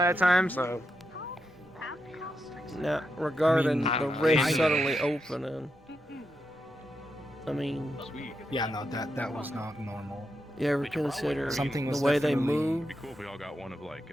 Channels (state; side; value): normal; both; correlation 0.85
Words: time, so... Now, regarding the rift suddenly opening, I mean... Yeah, no, that was not normal. You ever consider something the way they move? It'd be cool if we all got one of like